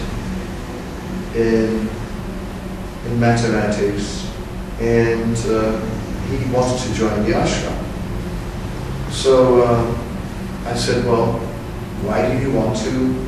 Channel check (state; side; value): identical; both; correlation 1.00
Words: in mathematics, and he wanted to join the ashram. So I said, well, why do you want to